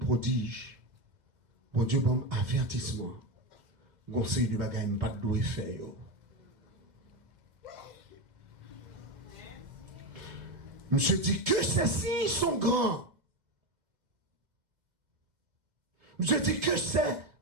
bon Dieu, bon avertissement. Conseil de bagaille, pas de doigt faire. Monsieur dit que ces signes sont grands. Monsieur dit que ces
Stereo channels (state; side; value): late; left; 2.0 ms